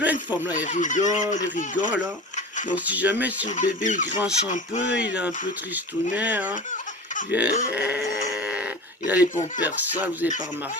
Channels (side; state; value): both; normal; correlation 0.34